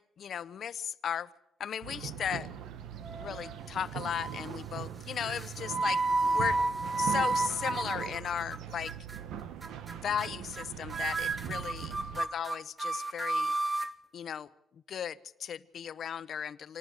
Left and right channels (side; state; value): both; normal; correlation 0.77